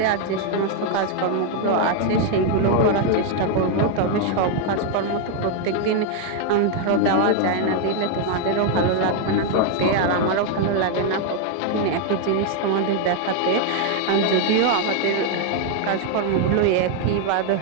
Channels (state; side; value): different; both; correlation 0.00